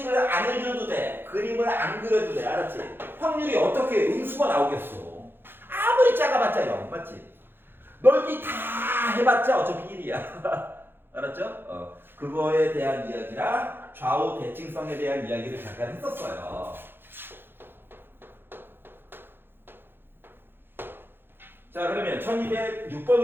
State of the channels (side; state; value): left; late; 0.10 ms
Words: 안 해줘도 돼. 그림을 안 그려도 돼. 알았지? 확률이 어떻게 음수가 나오겠어. 아무리 작아봤자 0, 맞지? 넓이 다 해봤자 어차피 1이야. 알았죠? 그거에 대한 이야기랑 좌우 대칭성에 대한 이야기를 잠깐 했었어요. 자, 그러면